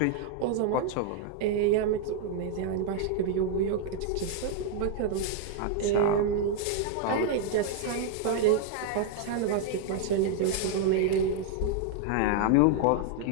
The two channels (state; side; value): different; both; correlation 0.00